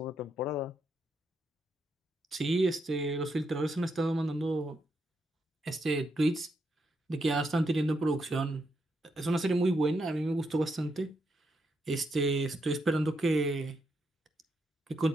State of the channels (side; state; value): both; normal; correlation 0.80